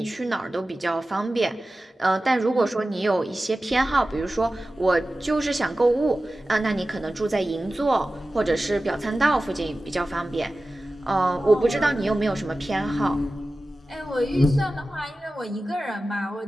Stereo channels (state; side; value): normal; both; correlation 0.95